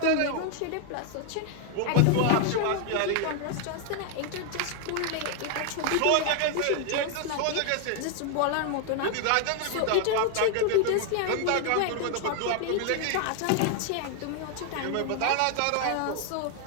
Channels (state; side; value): different; both; correlation 0.00